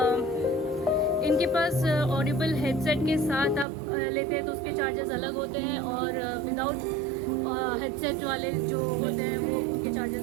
इनके पास ऑडिबल हेडसेट के साथ आप लेते हैं तो उसके चार्जेस अलग होते हैं, और विदाउट हेडसेट वाले जो होते हैं वो उनके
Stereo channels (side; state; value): left; drops out; at 3.7 s